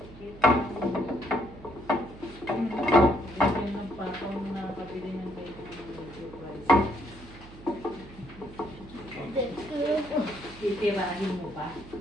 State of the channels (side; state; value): right; noise; hum, 18 dB below the sound